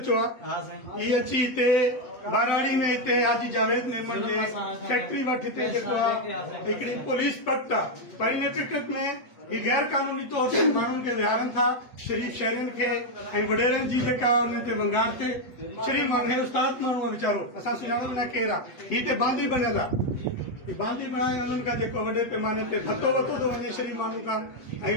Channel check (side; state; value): right; late; 8.1 ms